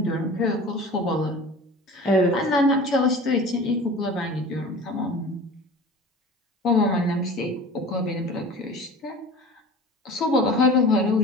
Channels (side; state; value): both; normal; correlation 0.39